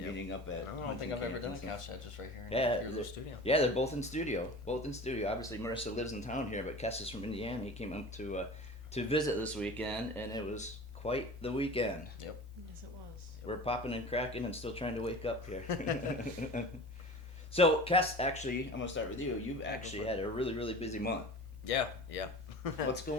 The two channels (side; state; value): both; normal; correlation 0.37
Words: up at... I don't think I've ever done a couch chat just right here in your little studio. Yeah, they're both in studio. Obviously, Marissa lives in town here, but Kess is from Indiana. He came up to visit this weekend, and it was quite the weekend. Yep. Yes, it was. We're popping and cracking and still trying to wake up here. So, Kess, actually, I'm going to start with you. You've actually had a really, really busy month. Yeah. What's